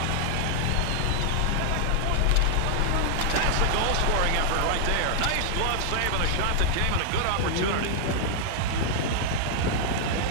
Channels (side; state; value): both; different; correlation 0.00